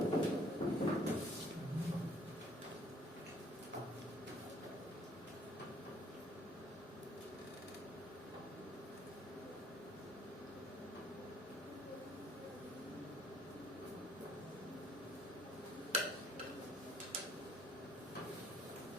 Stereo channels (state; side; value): normal; both; correlation 0.61